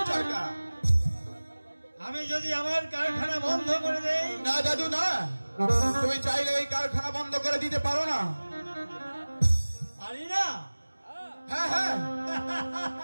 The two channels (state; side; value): inverted; both; correlation -1.00